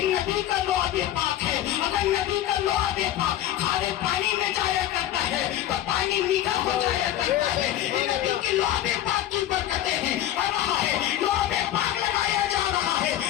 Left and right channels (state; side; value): quieter; right; 12.6 dB